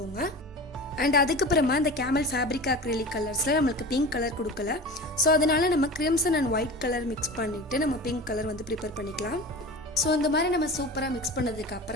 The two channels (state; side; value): normal; both; correlation 0.33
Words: அண்ட் அதுக்கப்புறமா இந்த கேமல் ஃபேப்ரிக் அக்ரிலிக் கலர்ஸில் நம்மளுக்கு பிங்க் கலர் கொடுக்கல. ஸோ அதனால நம்ம crimson and white colour mix பண்ணிவிட்டு நம்ம பிங்க் கலர் வந்து ப்ரிப்பேர் பண்ணிக்கலாம். ஸோ இந்த மாதிரி நம்ம சூப்பராக மிக்ஸ் பண்ணதுக்கு